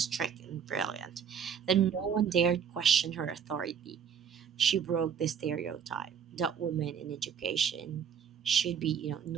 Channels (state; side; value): quieter; left; 7.5 dB